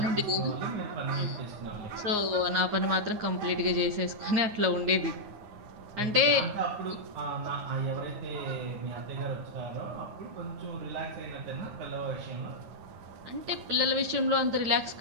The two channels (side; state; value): left; late; 9.5 ms